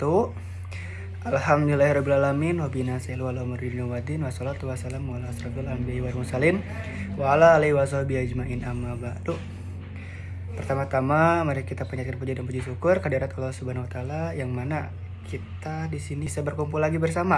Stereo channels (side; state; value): both; identical; correlation 1.00